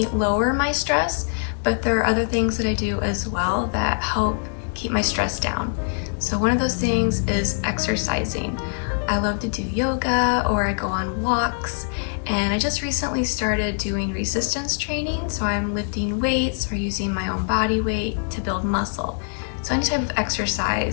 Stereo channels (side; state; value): right; silent; digital silence